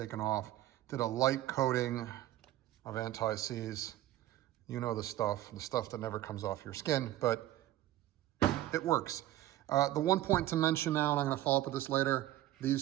off. Did a light coating of anti-seize. You know the stuff that never comes off your skin, but it works. The one point to mention now, and I'm gonna follow up with this later,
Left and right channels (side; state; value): left; quieter; 14.4 dB